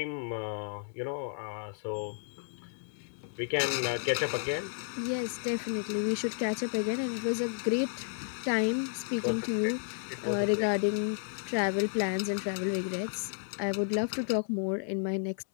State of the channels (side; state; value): right; silent; 56 dB below the other